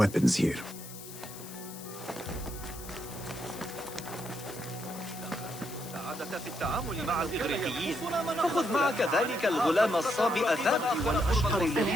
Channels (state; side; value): noise; left; hiss, 14 dB below the sound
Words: here. السعادة في التعامل مع الإغريقيين. فخذ معك ذلك الغلام الصابئ الذكي والأشقر